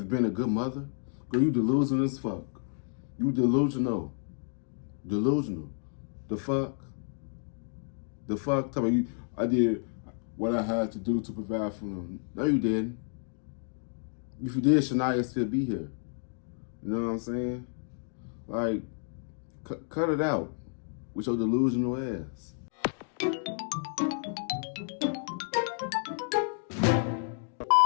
being a good mother. Girl, you delusional as fuck. You delusional. Delusional. The fuck? The fuck? Tell me, I did what I had to do to provide for them. No, you didn't. If you did, Shaniya still be here. You know what I'm saying? Like, cut it out with your delusional ass.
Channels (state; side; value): silent; right; 57 dB below the other